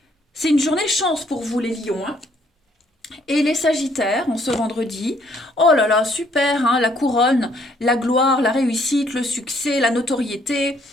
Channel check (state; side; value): normal; both; correlation 0.66